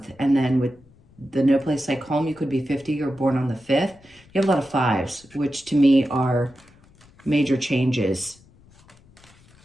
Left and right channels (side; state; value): left; noise; rumble, 28 dB below the sound